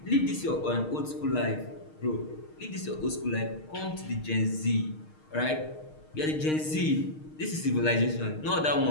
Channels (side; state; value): right; late; 6.5 ms